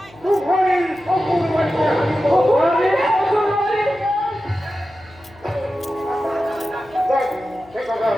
তুফানির সকল বাড়িতে সে কথা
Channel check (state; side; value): noise; left; hum, 25 dB below the sound